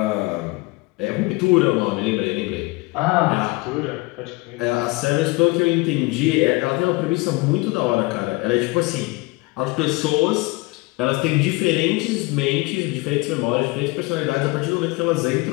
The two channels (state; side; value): quieter; right; 24.1 dB